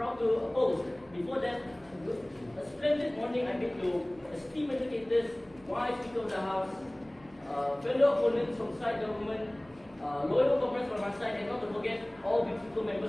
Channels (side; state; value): right; noise; hum, 27 dB below the sound